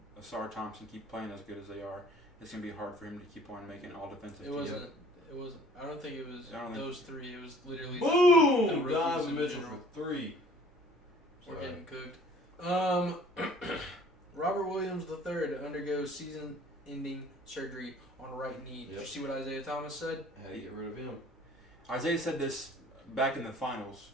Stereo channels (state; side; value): normal; both; correlation 0.52